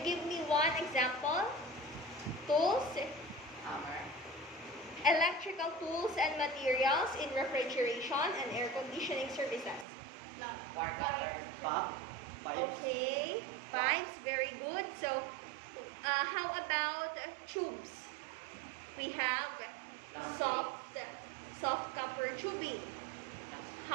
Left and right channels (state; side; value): drops out; left; at 9.9 s